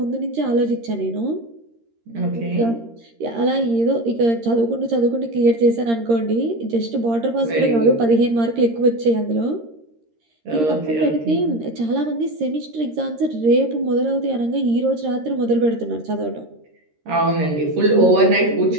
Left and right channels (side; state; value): left; late; 13 ms